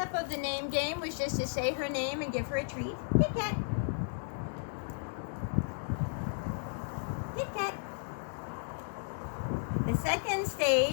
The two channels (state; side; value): silent; right; digital silence